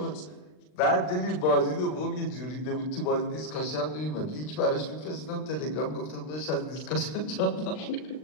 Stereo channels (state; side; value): late; right; 39 ms